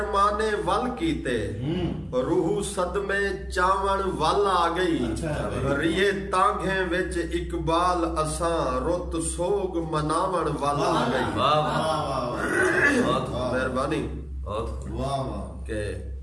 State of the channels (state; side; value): identical; both; correlation 1.00